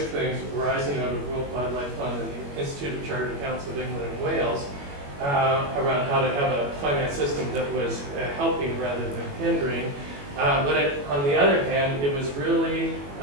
things arising out of World Wildlife Fund and the Institute of Chartered Accountants of England and Wales around how to have a finance system that was helping rather than hindering. But on the other hand, it was really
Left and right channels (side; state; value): left; late; 21 ms